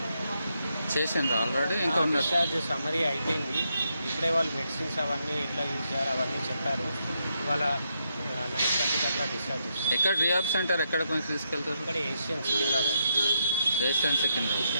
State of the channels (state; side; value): inverted; both; correlation -0.80